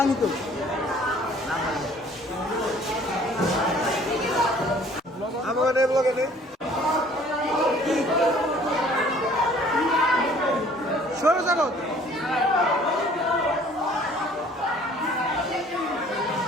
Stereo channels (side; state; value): both; normal; correlation 0.54